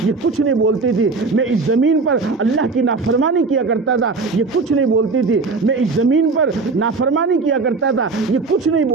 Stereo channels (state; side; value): quieter; left; 4.1 dB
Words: یہ کچھ نہیں بولتی تھی. میں اس زمین پر اللہ کی نافرمانی کیا کرتا تھا، یہ کچھ نہیں بولتی تھی. میں اس زمین پر نافرمانی کیا کرتا تھا، یہ کچھ نہیں